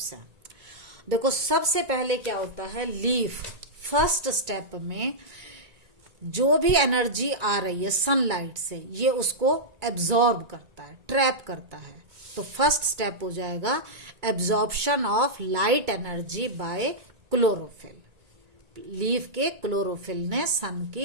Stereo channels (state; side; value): late; left; 2.3 ms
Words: हैं? देखो सबसे पहले क्या होता है, लीफ फर्स्ट स्टेप में जो भी एनर्जी आ रही है सनलाइट से, ये उसको एब्जॉर्ब करता है, ट्रैप करता है। तो फर्स्ट स्टेप हो जाएगा absorption of light energy by chlorophyll. Leaf के क्लोरोफिल ने सन